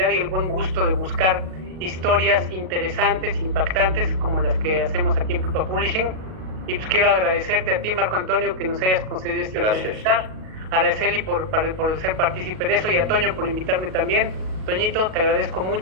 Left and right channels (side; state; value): left; late; 38 ms